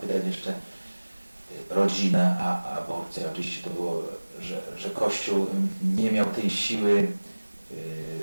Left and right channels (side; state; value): both; inverted; correlation -1.00